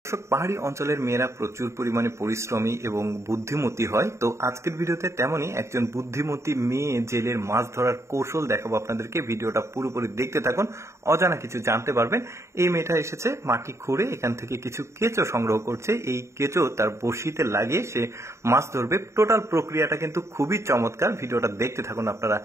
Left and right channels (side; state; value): left; late; 0.14 ms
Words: পাহাড়ি অঞ্চলের মেয়েরা প্রচুর পরিমাণে পরিশ্রমী এবং বুদ্ধিমতী হয়। তো আজকের ভিডিওতে তেমনই একজন বুদ্ধিমতী মেয়ে জেলের মাছ ধরার কৌশল দেখাবো আপনাদেরকে। ভিডিওটা পুরোপুরি দেখতে থাকুন, অজানা কিছু জানতে পারবেন। এই মেয়েটা এসেছে মাটি খুঁড়ে এখান থেকে কিছু কেঁচো সংগ্রহ করছে। এই কেঁচো তার বড়শিতে লাগিয়ে সে মাছ ধরবে। টোটাল প্রক্রিয়াটা কিন্তু খুবই চমৎকার, ভিডিওটা দেখতে থাকুন আপনারা।